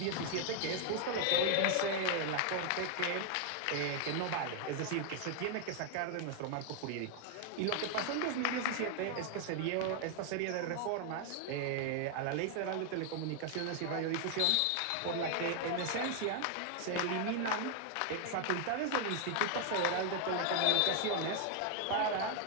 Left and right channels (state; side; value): different; both; correlation 0.00